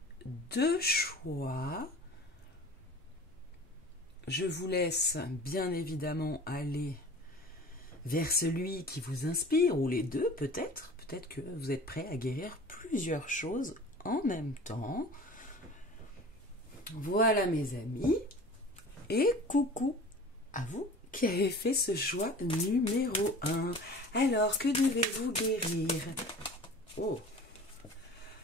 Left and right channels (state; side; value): normal; both; correlation 0.41